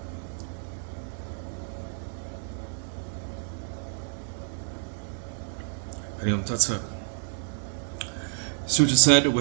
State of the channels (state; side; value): silent; left; digital silence